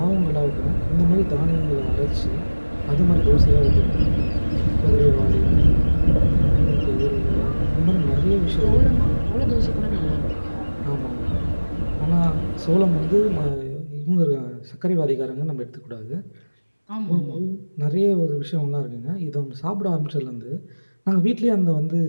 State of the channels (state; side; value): inverted; both; correlation -1.00